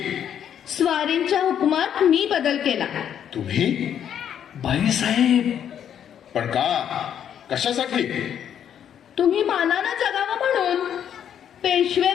स्वारींच्या हुकुमात मी बदल केला. तुम्ही? बाईसाहेब. पण का? कशासाठी? तुम्ही मानानं जगावं म्हणून, पेशवे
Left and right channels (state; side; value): quieter; right; 9.3 dB